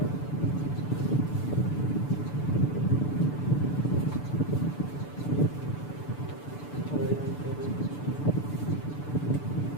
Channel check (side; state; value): right; late; 6.9 ms